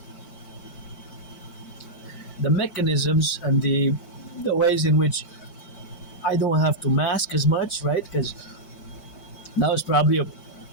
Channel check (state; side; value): late; right; 4.6 ms